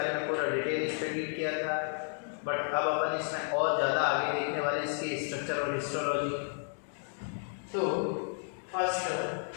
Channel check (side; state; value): right; silent; digital silence